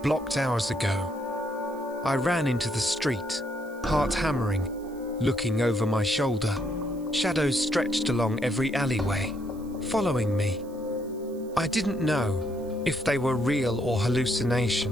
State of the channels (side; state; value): right; noise; hiss, 26 dB below the sound